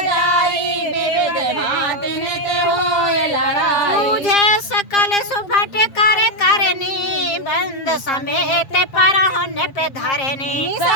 विविध भांति नित होए लड़ाई तुझे सकल सुभट कर करनी बंद समेत पर होने पे धरनी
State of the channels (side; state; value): right; late; 7.4 ms